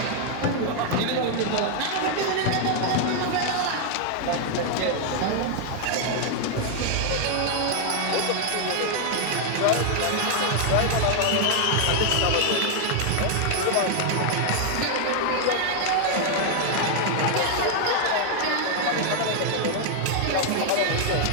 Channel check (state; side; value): different; both; correlation 0.00